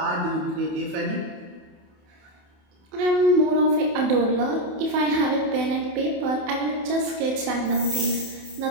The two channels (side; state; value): left; late; 28 ms